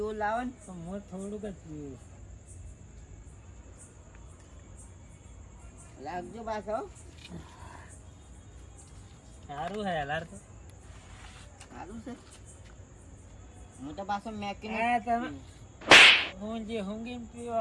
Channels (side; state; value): both; identical; correlation 1.00